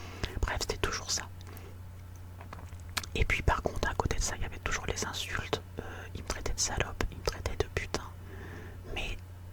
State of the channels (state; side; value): identical; both; correlation 1.00